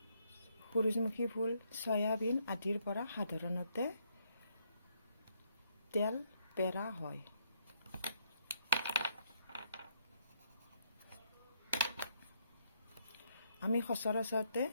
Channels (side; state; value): both; inverted; correlation -0.73